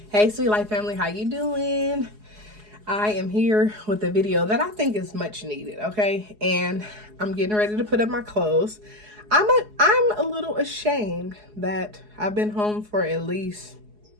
Hey, SweetLife Family, how you doing? I am here with a video that I think is much needed, okay? And I'm getting ready to put up my clothes. I'm a little ashamed that I've been home for at least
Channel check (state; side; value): late; left; 4.8 ms